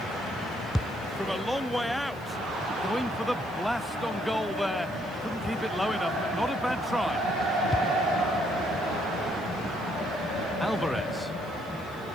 From a long way out. Going for the blast on goal there. Couldn't keep it low enough, but not a bad try. Alvarez.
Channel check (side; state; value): right; noise; hiss, 25 dB below the sound